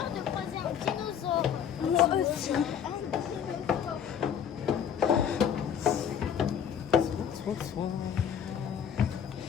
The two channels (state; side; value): quieter; right; 8.4 dB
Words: de croiser un dinosaure. Moi aussi.